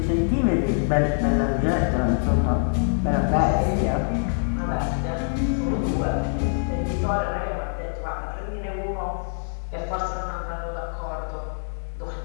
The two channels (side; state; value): right; silent; 62 dB below the other